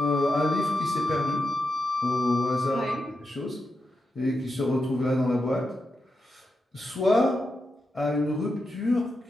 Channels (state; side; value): normal; both; correlation 0.87